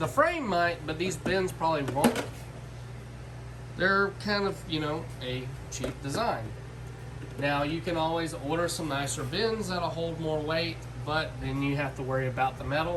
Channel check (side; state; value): both; identical; correlation 1.00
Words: frame might, but these bins probably won't. They're kind of, you know, a cheap design. Now, you can always order some nicer bins that'll hold more weight, but then you have to worry about the